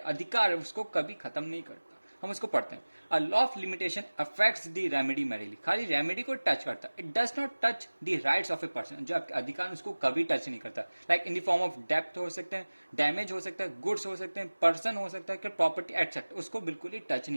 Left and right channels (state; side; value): inverted; both; correlation -1.00